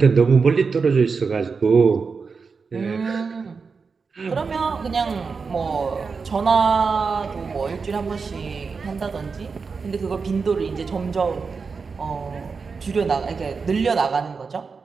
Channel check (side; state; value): left; quieter; 5.0 dB